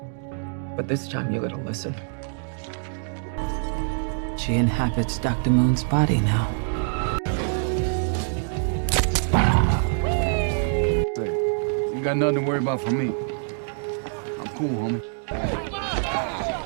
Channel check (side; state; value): left; silent; digital silence